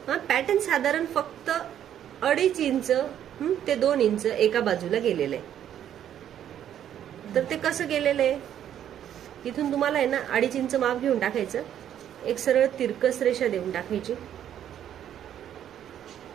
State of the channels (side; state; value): left; quieter; 10.3 dB